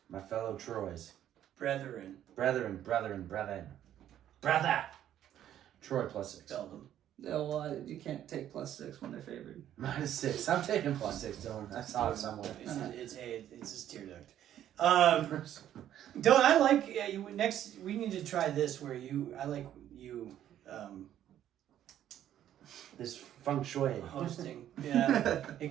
My fellow Troys. Brethren. Brethren. Brother! Troy plus 6. Spell them. Oh, well, you can't take +6 when they're favored. Minus 6. I'm taking plus 6, Dylan. I saw it somewhere. It's just tear duct. Dylan, I like you. Next, we need to try this where This feng shui. hosting. Yeah, it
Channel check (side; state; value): left; quieter; 11.2 dB